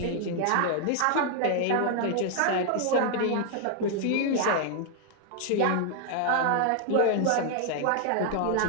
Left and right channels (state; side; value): different; both; correlation 0.00